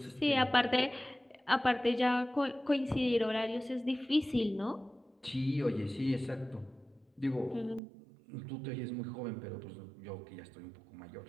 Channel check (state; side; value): drops out; left; at 7.8 s